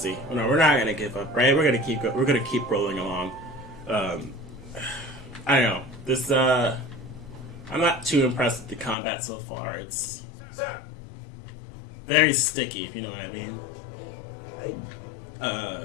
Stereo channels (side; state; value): right; drops out; at 9.0 s